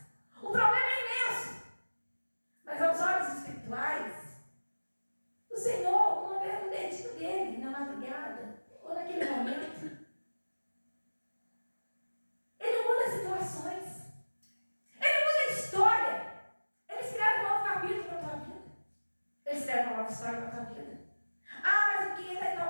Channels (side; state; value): both; inverted; correlation -1.00